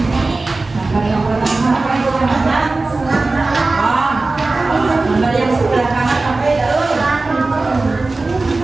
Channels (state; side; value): quieter; left; 3.4 dB